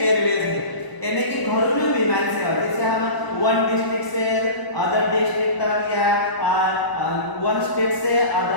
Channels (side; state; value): right; late; 1.0 ms